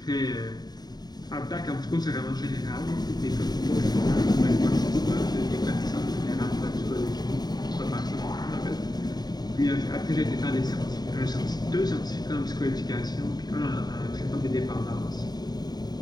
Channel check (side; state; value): right; late; 0.20 ms